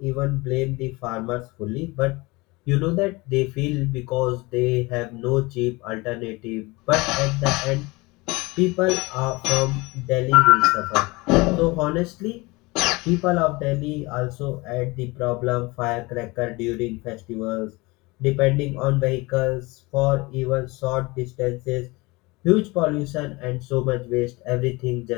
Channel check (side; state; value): right; quieter; 23.8 dB